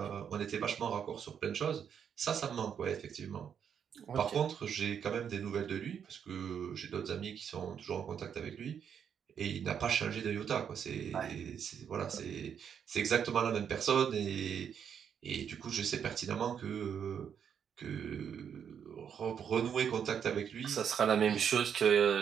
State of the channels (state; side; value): quieter; left; 7.9 dB